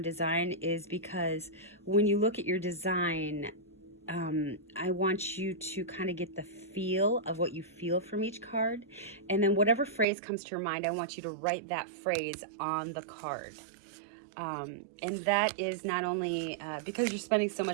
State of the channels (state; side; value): drops out; left; at 10.1 s